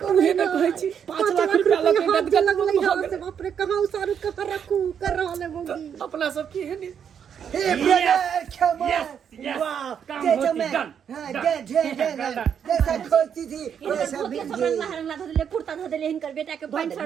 हे ना कहै छी 5 लाख रुपया लगे गदगद लगलै भ हां से गेल। बाप रे कहां उसारू कहां रखू कर रहल है मोगी। अपना सब की है नी। Hey, brother, come on. yes. Wow, काम gentleman. होती, done, हाँ, done. done. जैसा खोलती थी वैसा सब बिक रंगला गई। रंगला धऽ देलिए, कुर्ता धऽ देलिए, हिनकर बेटा के पैंट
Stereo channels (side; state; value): left; quieter; 8.0 dB